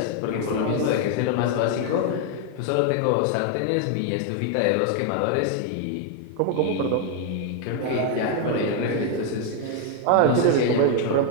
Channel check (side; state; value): both; different; correlation 0.00